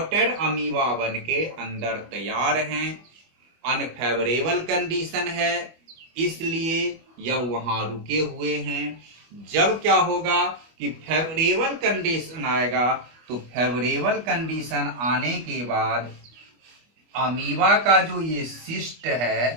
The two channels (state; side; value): late; left; 25 ms